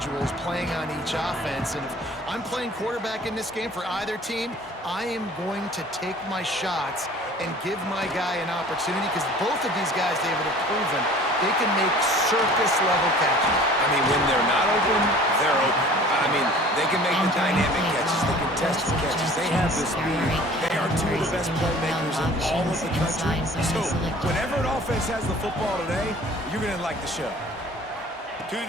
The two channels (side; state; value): both; normal; correlation 0.47